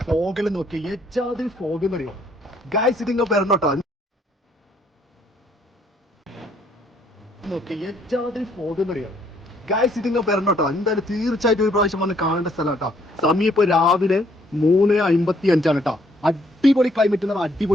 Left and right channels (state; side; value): normal; both; correlation 0.66